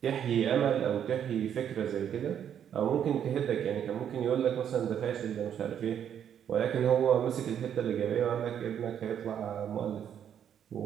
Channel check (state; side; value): quieter; left; 9.1 dB